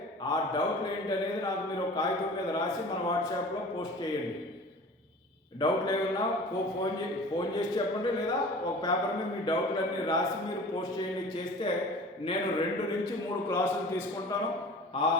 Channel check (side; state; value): both; normal; correlation 0.41